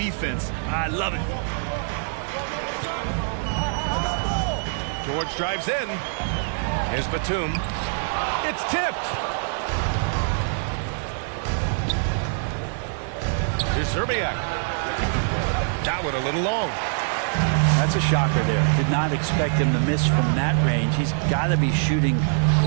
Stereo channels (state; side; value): silent; left; 60 dB below the other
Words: I love it. George drives in. Here's Batum. It's tipped. Here's Zerbiak. That one a little long. That's a shocker there. Did not expect him to miss from that range. He's got to be shooting